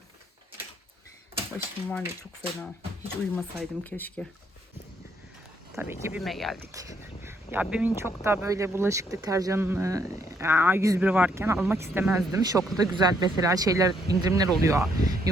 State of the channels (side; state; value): both; normal; correlation 0.71